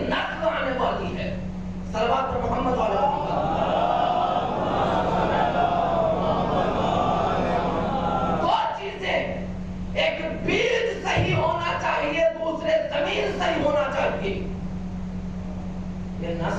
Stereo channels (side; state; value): both; identical; correlation 1.00